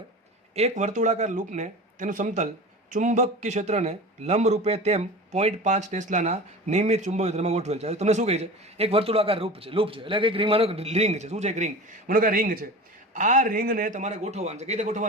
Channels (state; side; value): normal; both; correlation 0.34